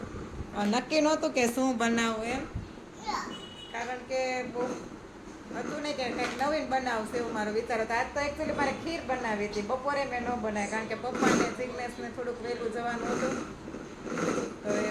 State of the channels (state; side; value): identical; both; correlation 1.00